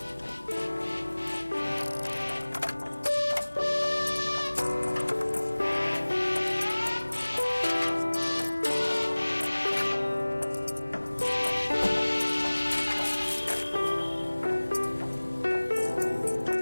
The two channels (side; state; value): both; inverted; correlation -1.00